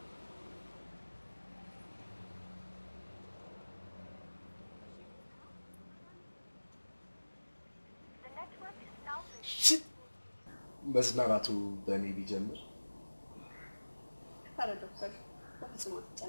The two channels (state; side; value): inverted; both; correlation -1.00